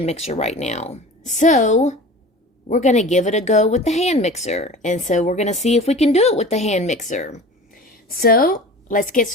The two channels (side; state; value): both; normal; correlation 0.38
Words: mixer right now. So, we're going to give it a go with the hand mixer. And so, we're going to see if we can do it with the hand mixer. So, let's get